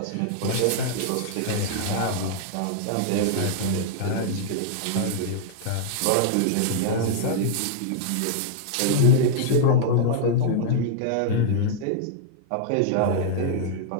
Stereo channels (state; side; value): different; both; correlation -0.01